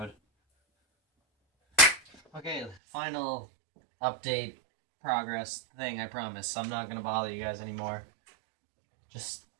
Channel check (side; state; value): left; drops out; at 2.8 s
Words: Okay, final update progress thing, I promise. I'm not gonna bother you guys anymore.